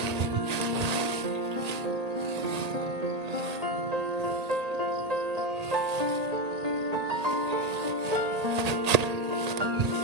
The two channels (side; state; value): left; late; 1.8 ms